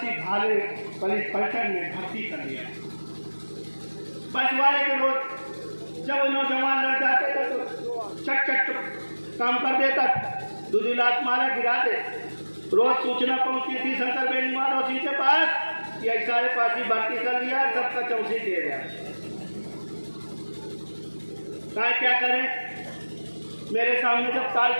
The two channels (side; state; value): both; inverted; correlation -1.00